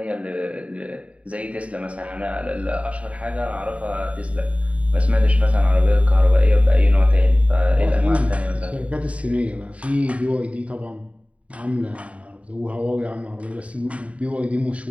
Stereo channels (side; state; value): left; late; 0.065 ms